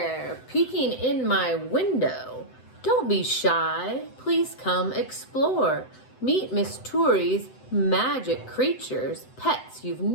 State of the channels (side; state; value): right; late; 7.9 ms